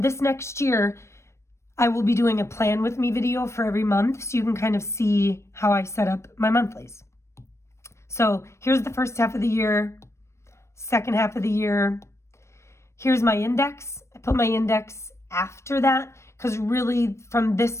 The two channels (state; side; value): late; right; 0.13 ms